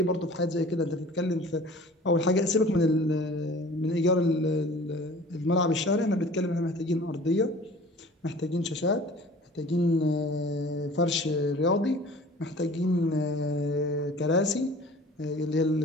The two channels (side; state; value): both; normal; correlation 0.45